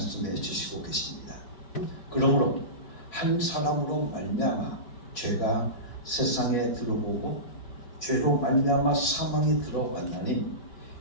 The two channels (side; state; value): right; late; 5.0 ms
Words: 주시고 계십니다. 그러므로 한 사람으로 말미암아 죄가 세상에 들어오고 죄로 말미암아 사망이 들어왔나니